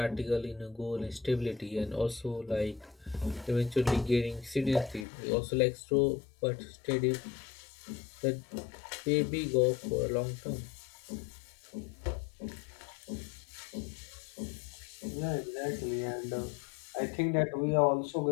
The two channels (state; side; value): drops out; right; at 5.1 s